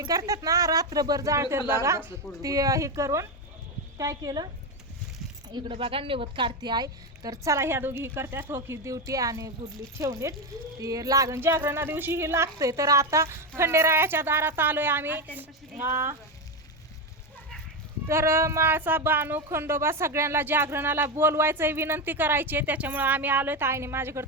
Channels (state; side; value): normal; both; correlation 0.12